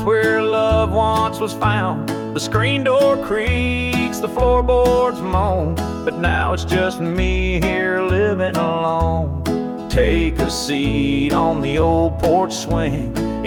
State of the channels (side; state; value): both; identical; correlation 1.00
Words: where love once was found. The screen door creaks, the floorboards moan, but now it's just me here living alone. Take a seat on the old porch swing.